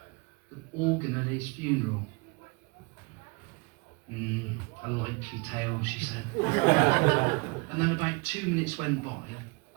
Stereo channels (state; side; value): quieter; left; 29.1 dB